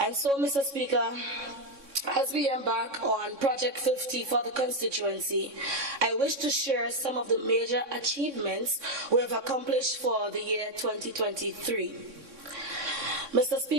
so, Mr. Speaker, as we embark on Project 50 for the constituency, I wish to share some of the major achievements we have accomplished for the year 2023. Mr.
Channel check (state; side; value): late; left; 3.6 ms